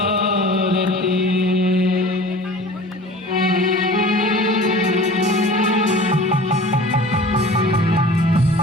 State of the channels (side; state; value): both; normal; correlation 0.42